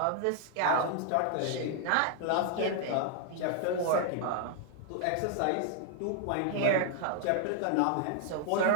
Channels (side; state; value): both; different; correlation 0.00